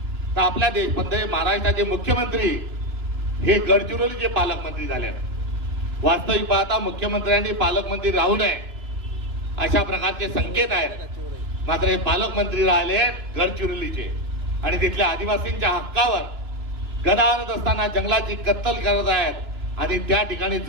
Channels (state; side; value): late; left; 2.9 ms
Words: तर आपल्या महाराष्ट्राचे मुख्यमंत्री हे गडचिरोलीचे पालकमंत्री झाले. वास्तविक पाहता मुख्यमंत्र्यांनी पालकमंत्री राहू नये अशा प्रकारचे संकेत आहेत. मात्र हे पालकमंत्री राहिले गडचिरोलीचे आणि तिथल्या आदिवासींच्या हक्कावर गदा आणत असताना जंगलाची कत्तल करत आहेत आणि त्या ठिकाणी